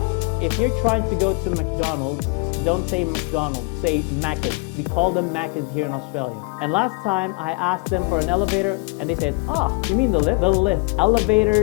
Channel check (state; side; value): quieter; right; 29.9 dB